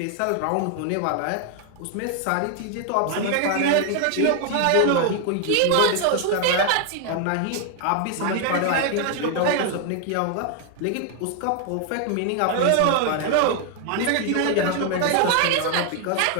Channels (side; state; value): both; different; correlation 0.00